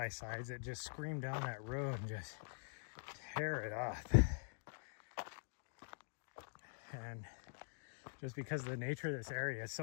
that just scream down that road and just tear it up. And just because of the nature of this area, it's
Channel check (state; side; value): silent; right; digital silence